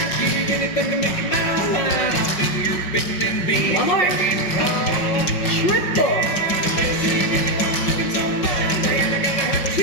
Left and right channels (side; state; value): right; late; 5.3 ms